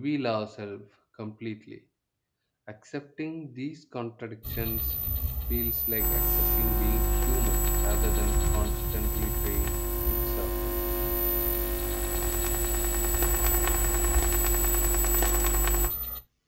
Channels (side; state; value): both; identical; correlation 1.00